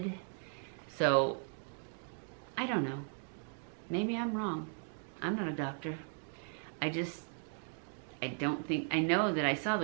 So, I don't know. Maybe I'm wrong. I'm not a doctor. I know that I saw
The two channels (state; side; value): silent; left; 53 dB below the other